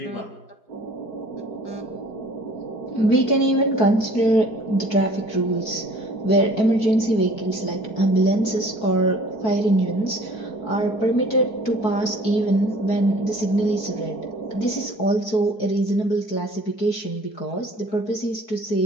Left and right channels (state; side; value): late; right; 4.5 ms